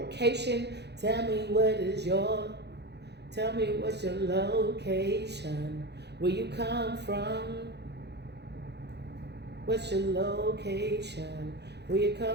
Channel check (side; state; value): left; late; 0.49 ms